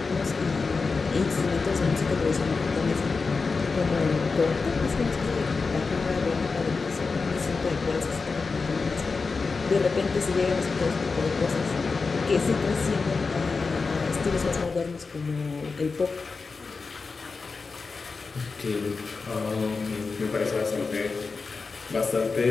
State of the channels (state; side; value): quieter; right; 4.4 dB